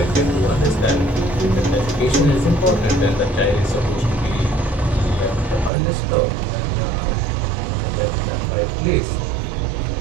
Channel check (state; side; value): drops out; left; at 5.7 s